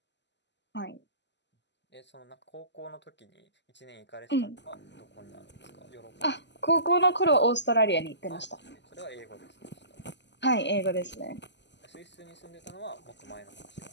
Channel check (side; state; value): right; late; 0.51 ms